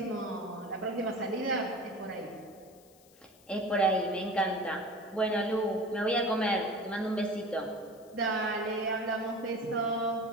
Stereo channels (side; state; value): left; noise; hiss, 27 dB below the sound